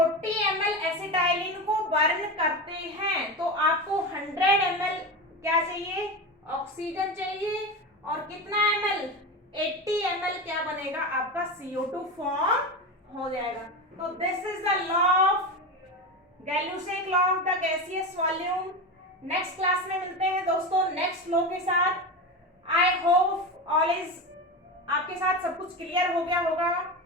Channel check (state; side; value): normal; both; correlation 0.22